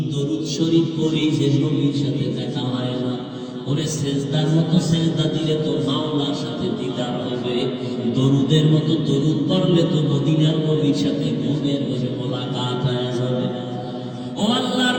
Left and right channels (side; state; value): both; identical; correlation 1.00